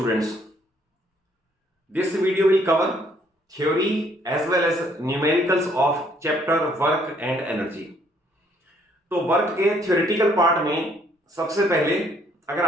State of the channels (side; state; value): both; normal; correlation 0.65